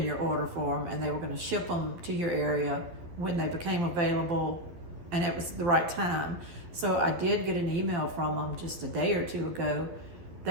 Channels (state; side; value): late; left; 12 ms